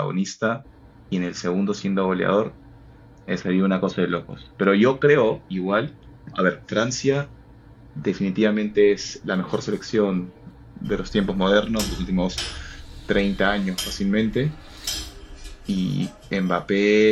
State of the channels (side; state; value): both; identical; correlation 1.00